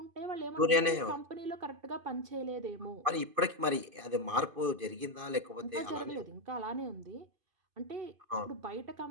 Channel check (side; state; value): left; late; 2.5 ms